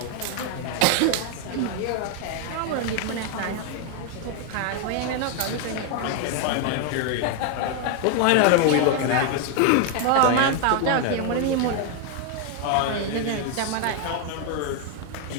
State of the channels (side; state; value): both; different; correlation 0.01